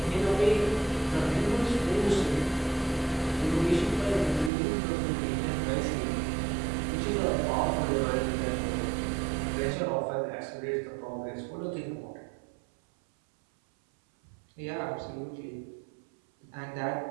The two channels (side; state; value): left; drops out; at 4.5 s